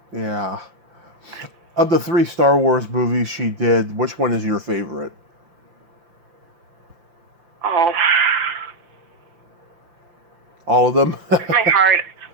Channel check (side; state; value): left; late; 5.8 ms